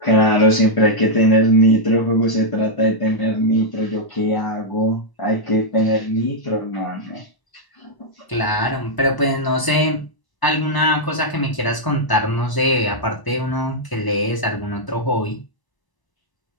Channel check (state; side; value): late; right; 1.0 ms